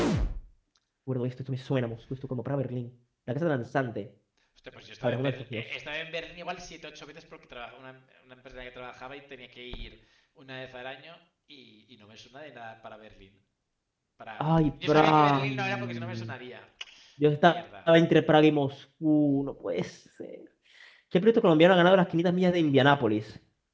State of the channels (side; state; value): both; identical; correlation 1.00